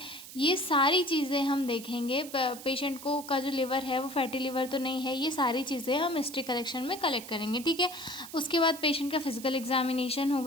ये सारी चीज़ें हम देखेंगे। पेशेंट को का जो लिवर है वो फैटी लिवर तो नहीं है, ये सारी चीज़ें हम हिस्ट्री कलेक्शन में कलेक्ट करेंगे, ठीक है। उसके बाद पेशेंट का फिजिकल एग्जामिनेशन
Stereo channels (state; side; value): noise; right; hiss, 14 dB below the sound